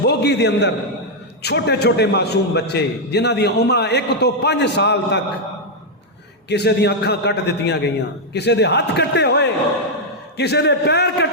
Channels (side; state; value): both; normal; correlation -0.02